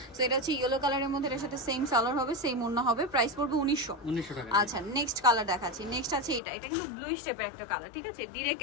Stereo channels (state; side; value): drops out; right; at 6.4 s